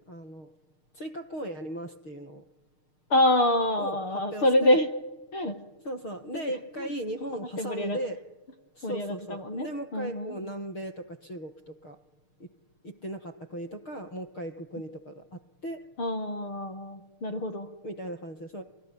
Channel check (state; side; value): late; right; 6.5 ms